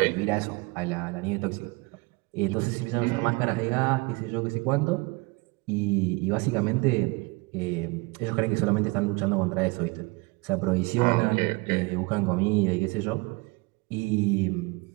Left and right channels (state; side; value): quieter; left; 26.6 dB